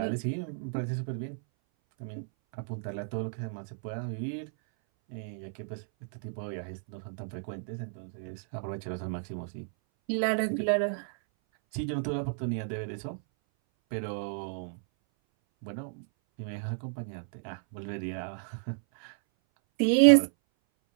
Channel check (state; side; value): silent; left; 56 dB below the other